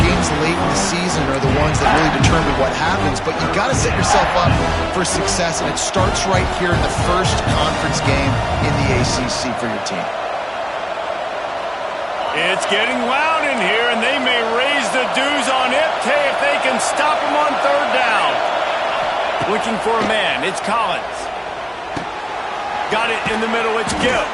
late in the season are the ones that really determine what happens. But you've got to set yourself up for success, and it starts right here in the first conference game in the ACC for your team. It's getting loud in here, and they may raise the dues on Iptay if they can stop him on 3rd down. Looking for a man. It's Collins. Got it in the middle. It's Gill.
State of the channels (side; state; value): both; identical; correlation 1.00